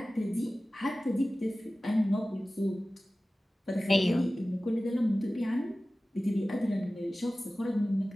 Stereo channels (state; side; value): normal; both; correlation 0.97